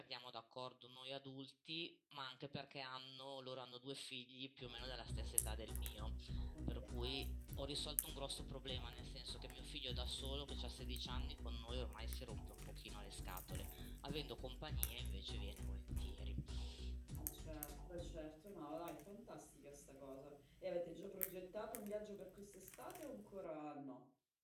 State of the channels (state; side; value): identical; both; correlation 1.00